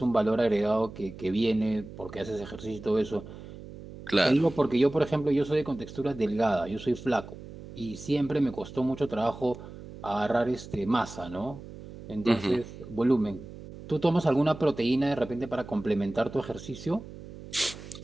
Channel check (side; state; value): right; noise; hum, 14 dB below the sound